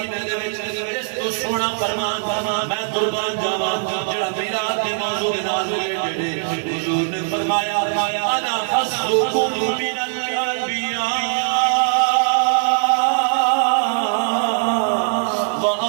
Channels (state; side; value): silent; left; digital silence